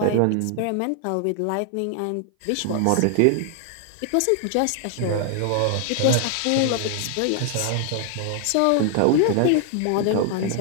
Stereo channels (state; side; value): different; both; correlation 0.00